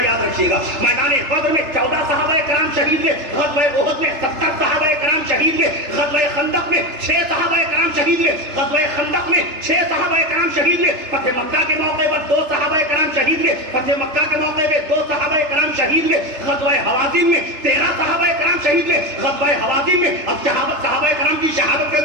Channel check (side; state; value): left; late; 3.3 ms